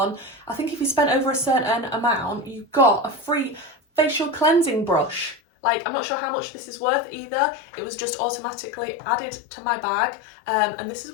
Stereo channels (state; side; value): drops out; right; at 5.4 s